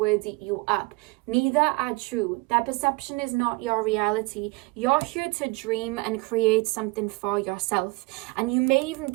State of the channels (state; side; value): quieter; left; 24.6 dB